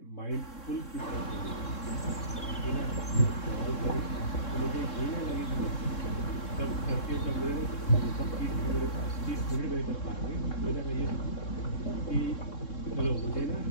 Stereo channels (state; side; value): late; right; 3.7 ms